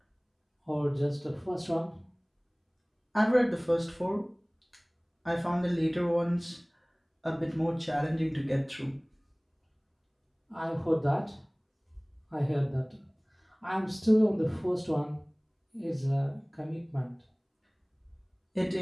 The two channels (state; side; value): identical; both; correlation 1.00